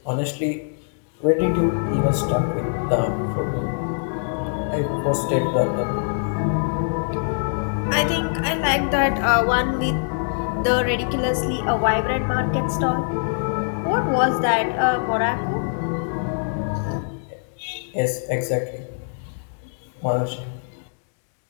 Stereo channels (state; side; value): silent; right; digital silence